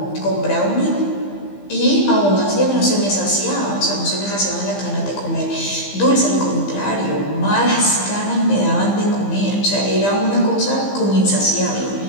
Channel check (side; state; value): right; late; 15 ms